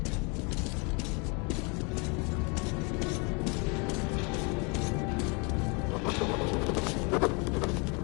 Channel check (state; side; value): quieter; right; 31.9 dB